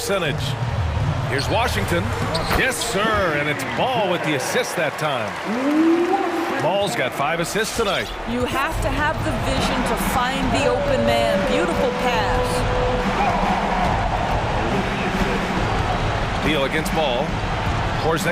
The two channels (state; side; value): identical; both; correlation 1.00